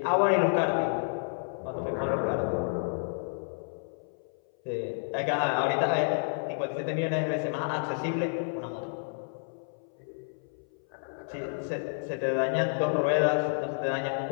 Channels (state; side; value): silent; right; 58 dB below the other